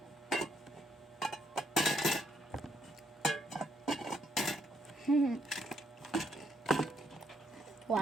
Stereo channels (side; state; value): both; normal; correlation 0.73